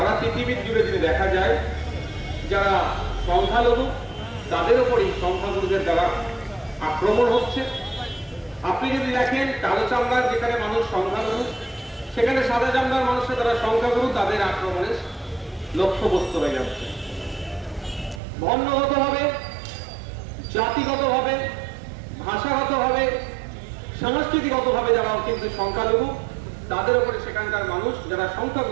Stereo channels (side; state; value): left; drops out; at 18.2 s